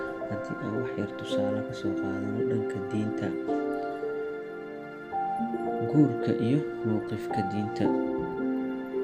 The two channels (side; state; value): both; identical; correlation 1.00